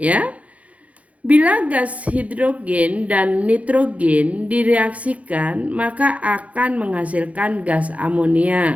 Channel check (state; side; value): late; left; 0.066 ms